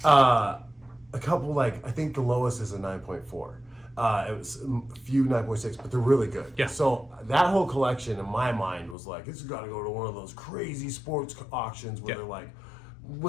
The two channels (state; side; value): drops out; right; at 9.0 s